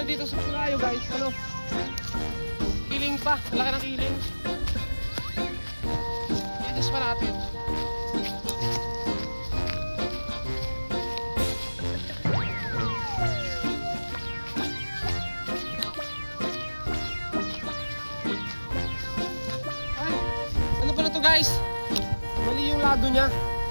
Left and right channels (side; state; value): both; inverted; correlation -1.00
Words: dito sa Pulayo guys, kiling pa, laki ng kiling. Itis pa natin. guys, mali yung lado niya.